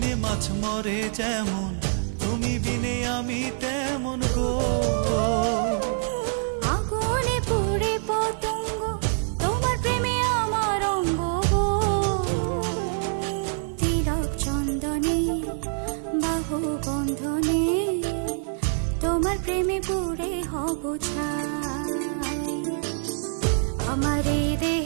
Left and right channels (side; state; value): left; silent; 61 dB below the other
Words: মাছ মরে যেমন, তুমি বিনে আমি তেমন গো। আগুনে পুড়ে পতঙ্গ, তোমার প্রেমে আমার অঙ্গ গো। তিলক চন্দনে বাহু বন্ধনে, তোমার প্রেমে পুড়ে হব ছাই। আমার এই